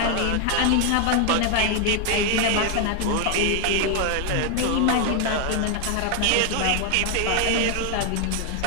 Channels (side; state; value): both; different; correlation 0.00